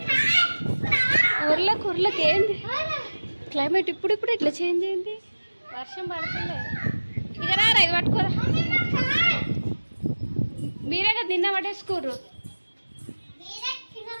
ఊర్లోకి ఏంది క్లైమేట్ ఇప్పుడు ఇట్లా చేంజ్ అయింది. వర్షం పడుతుందే. ఇక రారా ఇది పట్టుకోరా. మీరే కదా నిన్న పట్టేసుకోరు.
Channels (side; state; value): both; inverted; correlation -1.00